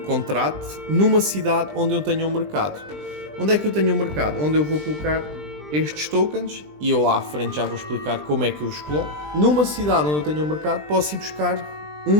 numa cidade onde eu tenha um mercado. Onde é que eu tenho um mercado? Onde eu vou colocar estes tokens, e eu lá à frente já vou explicar como é que eu os coloco. Numa cidade onde eu tenho um mercado, posso ir buscar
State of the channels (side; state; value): left; late; 20 ms